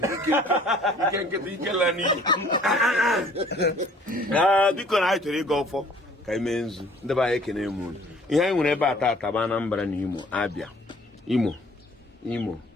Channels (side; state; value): both; normal; correlation 0.55